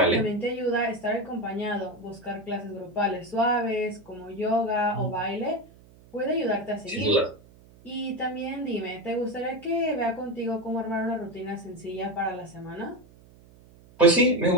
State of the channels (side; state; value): right; noise; hum, 25 dB below the sound